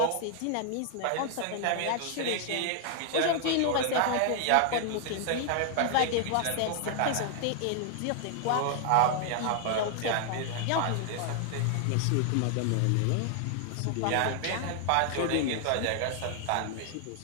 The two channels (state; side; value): different; both; correlation 0.00